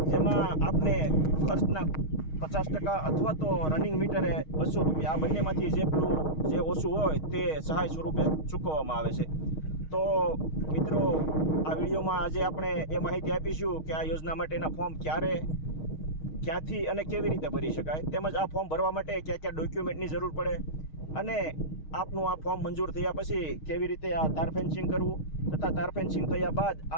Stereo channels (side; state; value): right; late; 6.4 ms